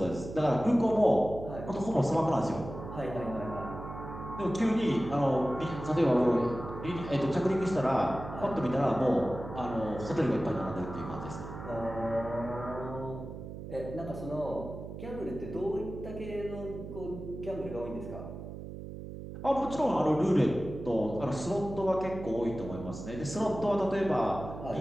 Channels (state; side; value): noise; right; hum, 10 dB below the sound